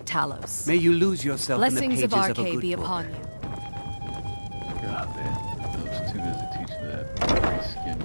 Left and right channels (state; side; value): inverted; both; correlation -1.00